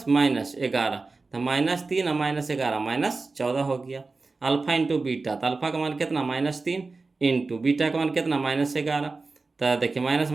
तो -3 और -11 -14 हो गया। अल्फा इंटू बीटा, तो अल्फा का मान कितना -3 इंटू बीटा का मान कितना -11। तो देखिए माइनस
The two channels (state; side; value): quieter; left; 3.8 dB